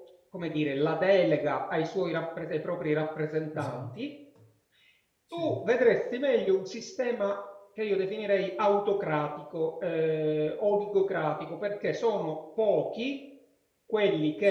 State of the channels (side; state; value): both; identical; correlation 1.00